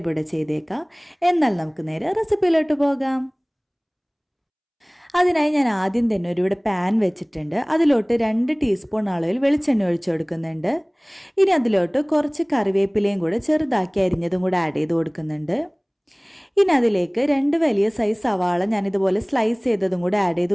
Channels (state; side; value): identical; both; correlation 1.00